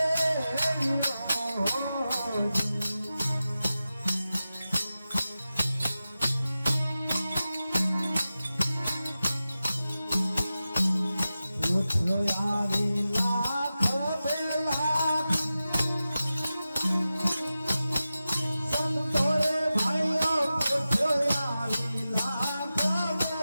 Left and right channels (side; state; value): both; inverted; correlation -0.94